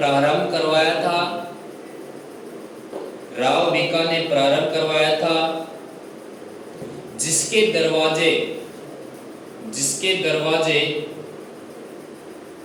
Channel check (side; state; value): both; identical; correlation 1.00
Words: करवाया था। राव बीका ने प्रारंभ करवाया था, जिसके दरवाजे, जिसके दरवाजे,